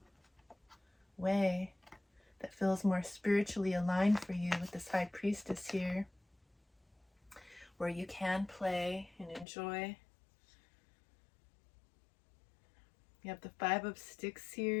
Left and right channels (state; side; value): drops out; right; at 9.5 s